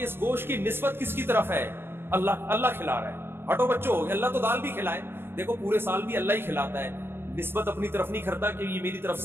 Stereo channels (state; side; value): late; left; 0.11 ms